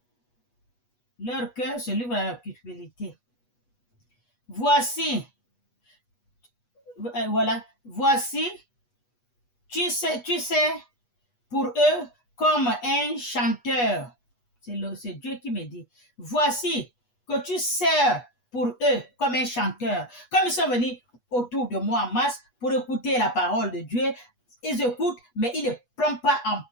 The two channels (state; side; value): late; right; 8.2 ms